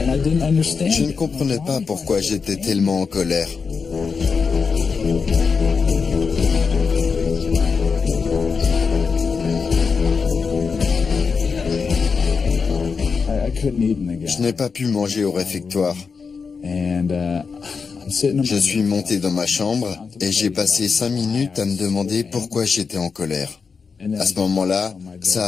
Je ne comprenais pas pourquoi j'étais tellement en colère. Je n'ai pas pu manger au réfectoire. Je suis monté dans ma chambre et j'ai passé 5 minutes à me demander pourquoi j'étais en colère. À ce moment-là, ça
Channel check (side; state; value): right; quieter; 5.3 dB